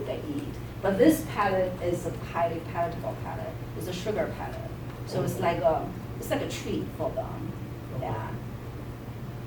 they eat. But this pellet is a highly palatable pellet. It's a sugar pellet. So it's like a treat for them. Okay. Yeah.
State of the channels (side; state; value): both; identical; correlation 1.00